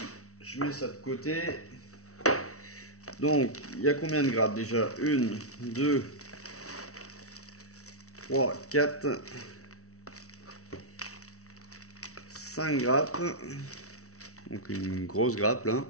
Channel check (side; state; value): right; late; 0.64 ms